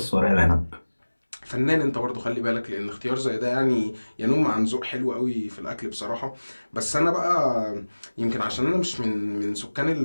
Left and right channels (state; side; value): inverted; both; correlation -1.00